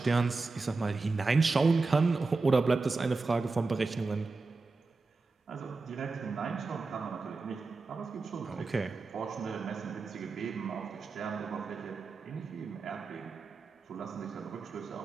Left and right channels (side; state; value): left; quieter; 3.8 dB